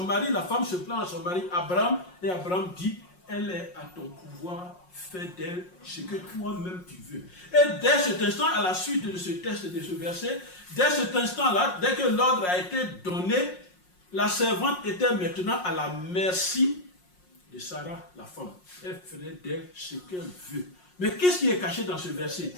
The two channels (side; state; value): right; late; 5.5 ms